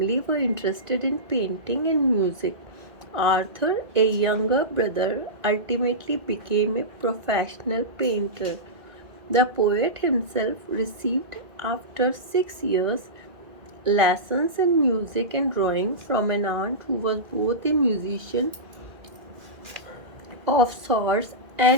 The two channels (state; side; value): late; left; 2.1 ms